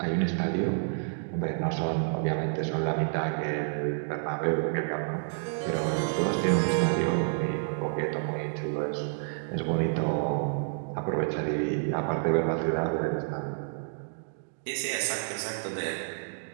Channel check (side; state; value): left; silent; digital silence